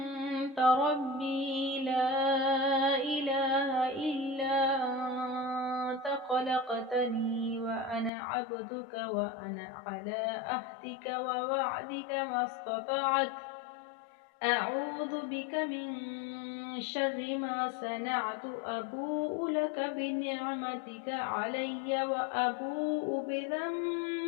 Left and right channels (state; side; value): drops out; right; at 8.1 s